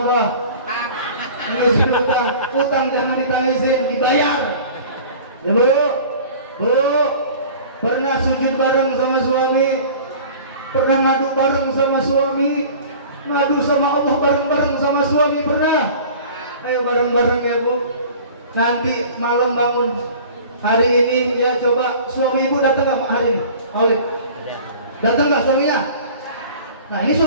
Nangisin utang. Utang jangan ditangisin, dibayar. Ya Bu, pernah sujud bareng sama suami? Pernah ngadu bareng sama suami? Ngadu sama Allah bareng-bareng sama suami pernah? Ayo bareng-bareng ya Bu. Nanti malam bangun hari ini ya, coba suami ibu datang nggak hari ini? Aulid datang nggak suaminya? Nah ini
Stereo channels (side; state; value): both; inverted; correlation -0.43